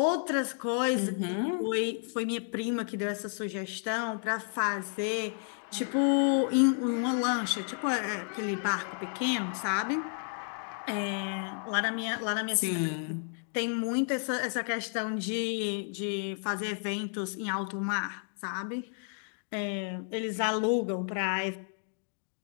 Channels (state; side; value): silent; right; 57 dB below the other